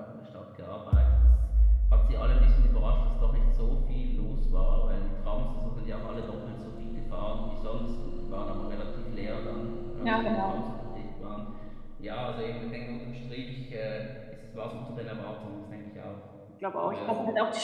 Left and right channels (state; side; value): identical; both; correlation 1.00